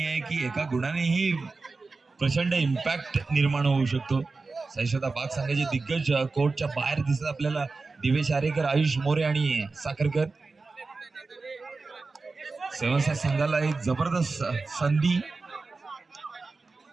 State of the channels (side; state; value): left; quieter; 3.9 dB